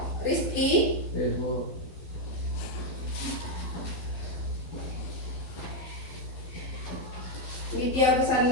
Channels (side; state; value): right; late; 12 ms